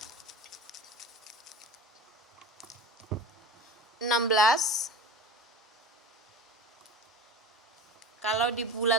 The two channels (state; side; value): normal; both; correlation 0.33